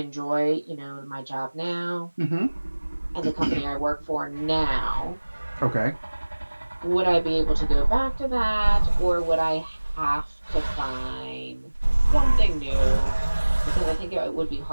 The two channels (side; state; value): both; inverted; correlation -1.00